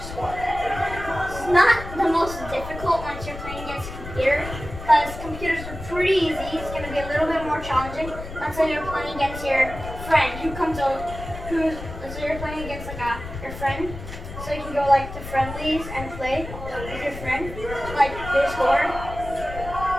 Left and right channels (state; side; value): noise; left; rumble, 10 dB below the sound